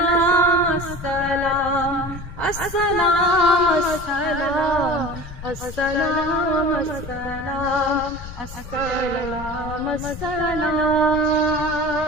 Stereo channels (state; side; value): noise; left; rumble, 13 dB below the sound